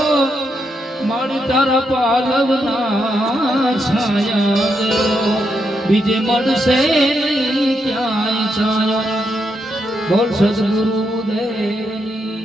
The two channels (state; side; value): normal; both; correlation 0.81